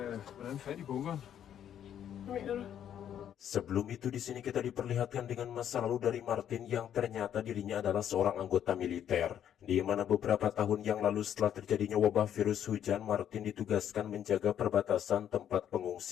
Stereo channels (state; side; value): quieter; right; 9.8 dB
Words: Sebelum itu di sini kita diperlihatkan dengan masa lalu dari Martin yang ternyata dirinya adalah seorang anggota militer. Di mana beberapa tahun yang lalu setelah terjadinya wabah virus hujan, Martin ditugaskan menjaga perbatasan tempat